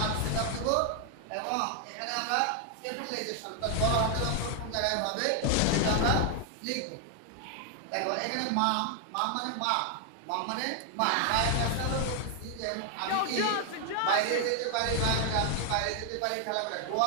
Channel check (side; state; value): both; different; correlation 0.00